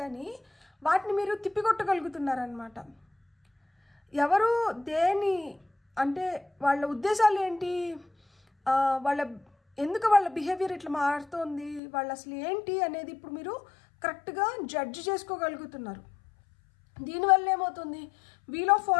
కానీ వాటిని మీరు తిప్పికొట్టగలుగుతున్నారనమాట. ఎవరు దేని అంటే వాళ్ళ ఉద్దేశాలు ఏంటి, ఎందుకు వాళ్ళ బిహేవియర్ ఇట్లా మారుతోంది, వాళ్ళు అసలు ఏంటి అనేది ఇప్పుడు మీరు కరెక్ట్గా జడ్జ్ చేసుకోగలుగుతున్నారు. దీనివల్ల ఏమవుతుంది, వీల్ ఆఫ్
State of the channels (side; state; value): right; drops out; at 11.8 s